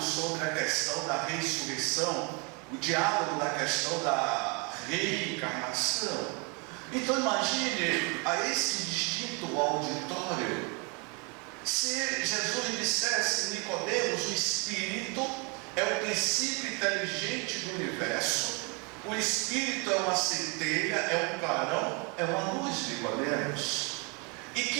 a questão da ressurreição, o diálogo da questão da reencarnação. Então imagine a esse distinto auditório, se Jesus dissesse: Nicodemos, o Espírito é o princípio inteligente do universo, o Espírito é uma centelha, é um clarão, é uma luz, Nicodemos, e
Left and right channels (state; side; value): quieter; left; 32.6 dB